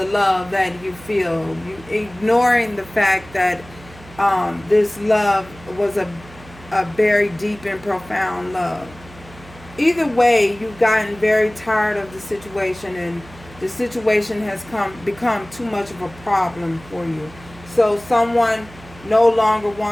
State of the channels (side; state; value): right; noise; hum, 20 dB below the sound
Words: love that you feel. You ignoring the fact that this love was a very deep and profound love. Either way, you've gotten very tired of the situation and the situation has become too much of a problem for you. So someone no longer